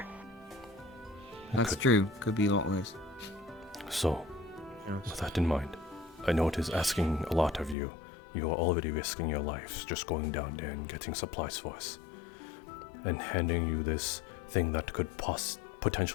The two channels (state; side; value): drops out; right; at 7.8 s